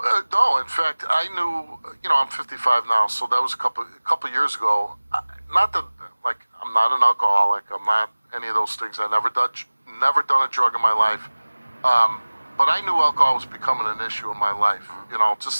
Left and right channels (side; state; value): both; inverted; correlation -1.00